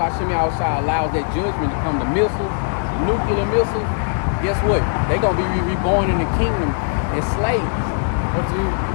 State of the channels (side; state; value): right; silent; digital silence